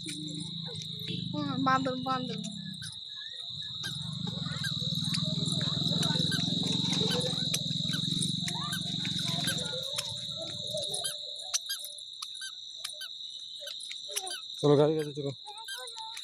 বান্দর বান্দর চলো গাড়ি কাছে চলো।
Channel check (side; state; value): both; identical; correlation 1.00